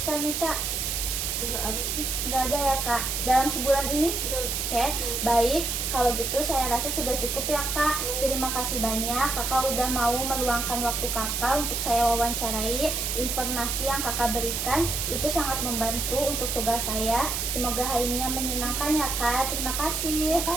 nih kak? Enggak ada sih. Nggak ada ya kak, dalam sebulan ini? Betul. Oke, baik. Kalau gitu saya rasa sudah cukup ya kak. Terima kasih banyak kakak udah mau meluangkan waktu kakak untuk saya wawancarai. Informasi yang kakak berikan itu sangat membantu untuk tugas saya. Semoga harinya menyenangkan ya kak. Terima kasih. Terima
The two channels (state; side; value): noise; right; hiss, 1 dB below the sound